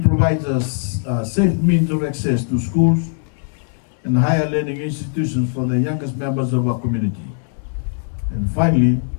provides us a safe means of access to schools and higher learning institutions for the youngest members of our community. And finally,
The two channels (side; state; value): right; silent; 66 dB below the other